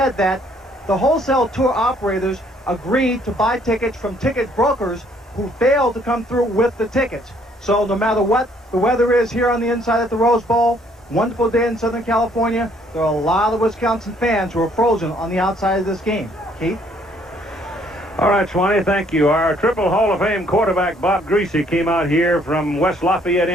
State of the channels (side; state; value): both; normal; correlation 0.64